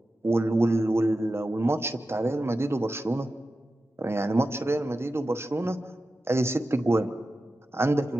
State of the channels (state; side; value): normal; both; correlation 0.92